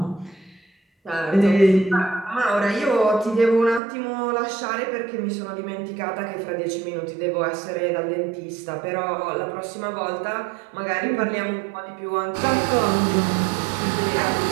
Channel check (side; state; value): left; drops out; at 3.8 s